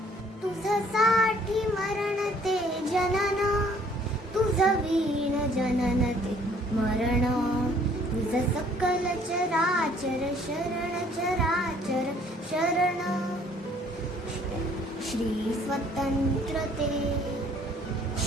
तुझ्यासाठी मरण ते जनन, तुझं वीण जनन ते मरण, तुझ सकल चराचर शरण चराचर शरण. Shri स्वतंत्रते,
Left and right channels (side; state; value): both; normal; correlation 0.59